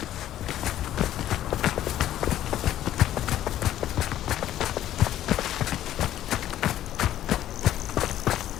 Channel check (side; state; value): right; quieter; 12.5 dB